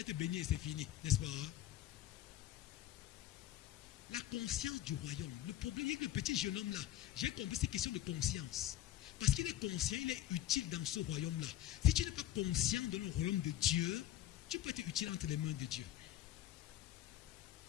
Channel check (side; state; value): right; quieter; 12.9 dB